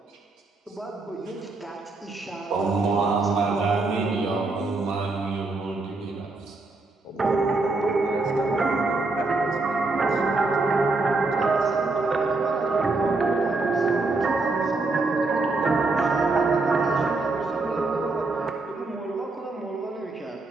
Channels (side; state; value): left; quieter; 3.4 dB